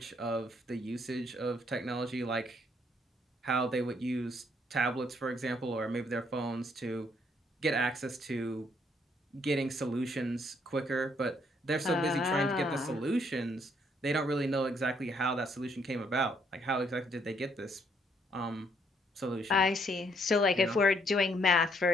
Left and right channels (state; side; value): normal; both; correlation 0.69